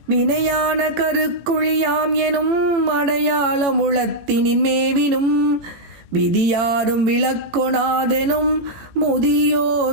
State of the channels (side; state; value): left; late; 18 ms